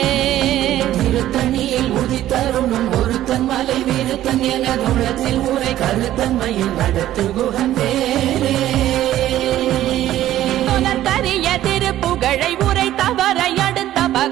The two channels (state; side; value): quieter; left; 13.3 dB